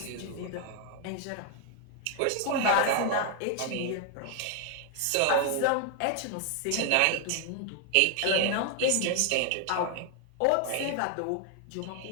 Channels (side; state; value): both; different; correlation 0.00